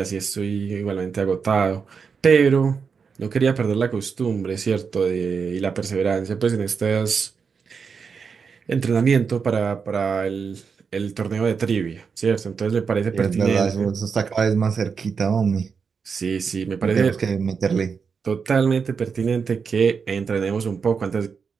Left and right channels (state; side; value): quieter; left; 5.8 dB